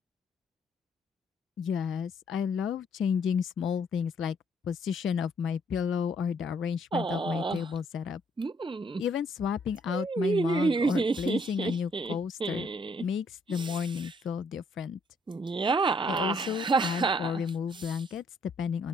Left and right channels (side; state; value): both; normal; correlation 0.67